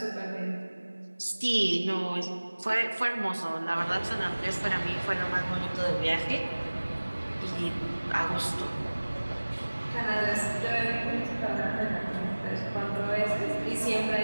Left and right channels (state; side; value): inverted; both; correlation -1.00